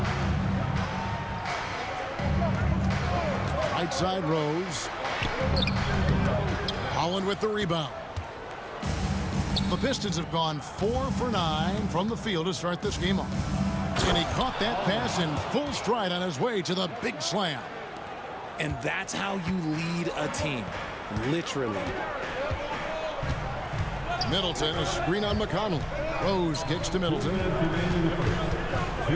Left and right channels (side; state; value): both; identical; correlation 1.00